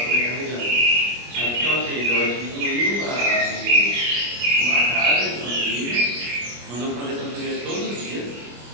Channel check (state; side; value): late; left; 25 ms